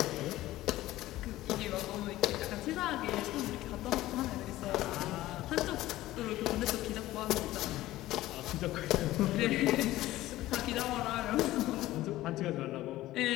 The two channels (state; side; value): quieter; right; 16.0 dB